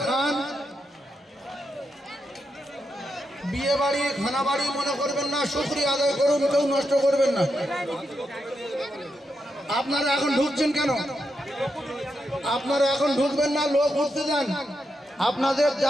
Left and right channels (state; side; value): normal; both; correlation 0.84